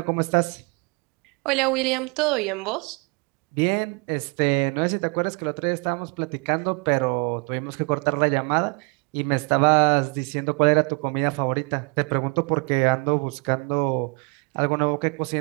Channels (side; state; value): left; quieter; 33.3 dB